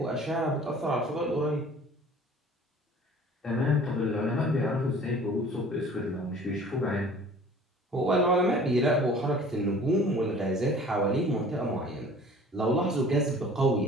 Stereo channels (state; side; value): normal; both; correlation 0.48